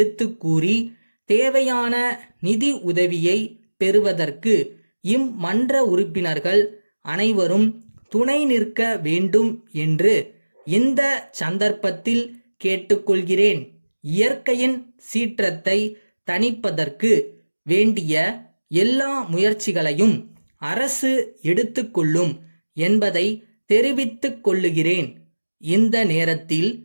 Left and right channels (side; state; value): both; inverted; correlation -1.00